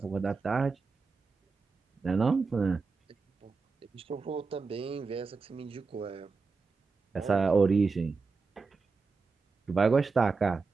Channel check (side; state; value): left; quieter; 4.5 dB